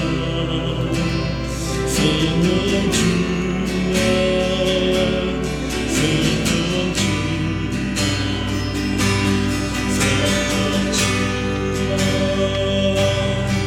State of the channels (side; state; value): both; identical; correlation 1.00